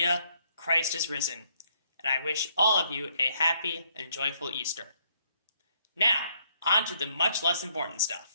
Christ is risen, and I wish all of you a happy and joyful Easter. Now, on to the much less important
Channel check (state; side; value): inverted; both; correlation -0.70